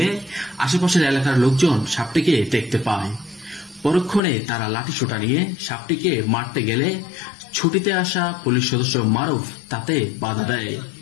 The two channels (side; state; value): right; drops out; at 4.2 s